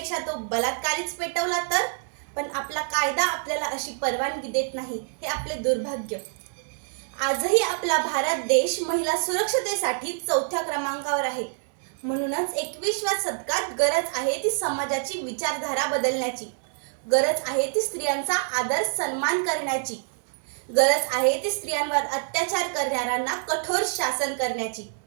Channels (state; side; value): silent; left; digital silence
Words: तो बलात्कारीच पेटवला तर. पण आपला कायदा आपल्याला अशी परवानगी देत नाही, हे आपले दुर्भाग्य. आजही आपला भारत देश महिला सुरक्षतेसाठी 4थ्या क्रमांकावर आहे. म्हणूनच 21व्या शतकात गरज आहे ती समाजाची विचारधारा बदलण्याची, गरज आहे ती स्त्रियांचा आदर सन्मान करण्याची, गरज आहे ती स्त्रियांवर अत्याचार करणाऱ्यांना कठोर शासन करण्याची.